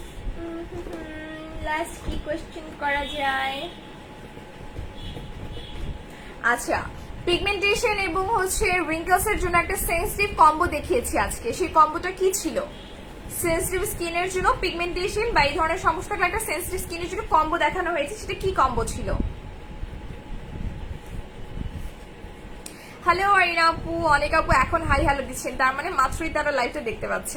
লাস্ট কি কোয়েশ্চেন করা যায়? আচ্ছা, পিগমেন্টেশন এবং হচ্ছে রিঙ্কলস এর জন্য একটা সেন্সিটিভ কম্বো দেখিয়েছি আজকে, সেই কম্বোটা কি ছিল? সেন্সিটিভ স্কিনের জন্য পিগমেন্টেশন বা এই ধরনের সমস্যা থাকলে একটা সেন্সিটিভ স্কিনের জন্য কম্বো দেখানো হয়েছে, সেটা কি কম্বো ছিল? হ্যালো আরিনা আপু, অনেক আপু এখন হাই হ্যালো দিচ্ছেন, তার মানে মাত্রই তারা লাইভটা দেখতে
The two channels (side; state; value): both; identical; correlation 1.00